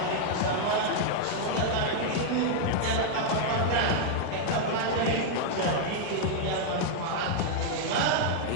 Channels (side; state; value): both; different; correlation -0.01